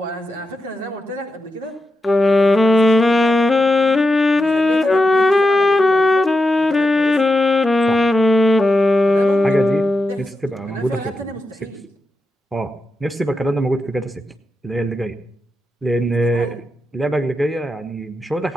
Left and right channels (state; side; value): normal; both; correlation 0.88